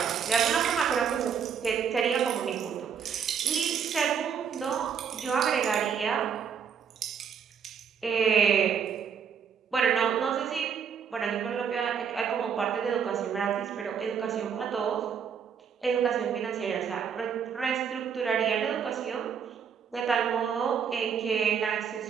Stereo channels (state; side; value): quieter; left; 7.2 dB